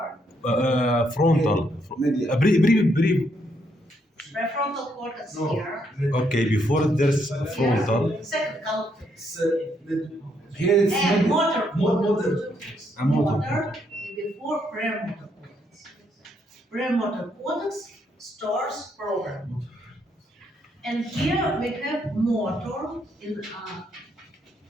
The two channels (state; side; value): normal; both; correlation 0.74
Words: Frontal. Media. Brief. Prefrontal cortex No. here. Okay, before there's frontal. Second column. Here it's And motor Motor. And motor. motor before premotor cortex. Premotor cortex stores program. And here we have motor in